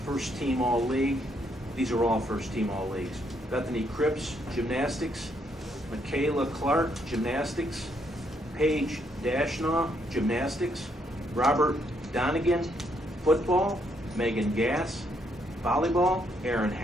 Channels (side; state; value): both; normal; correlation 0.73